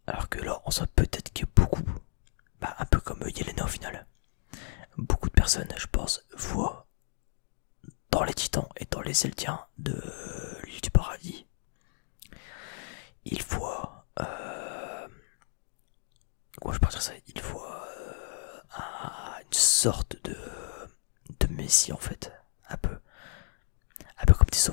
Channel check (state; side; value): silent; right; digital silence